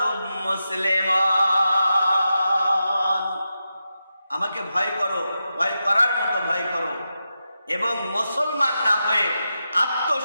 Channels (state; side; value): inverted; both; correlation -0.89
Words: মুসলিমুন। আমাকে ভয় করো, ভয় করার মতো ভয় করো, এবং মুসলমান না হয়ে,